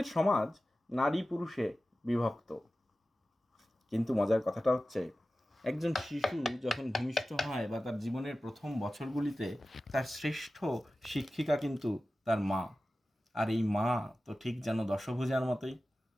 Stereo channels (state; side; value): normal; both; correlation 0.95